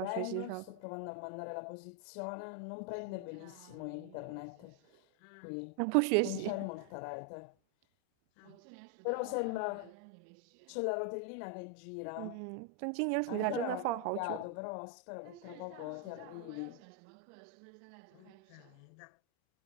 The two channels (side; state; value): both; different; correlation 0.01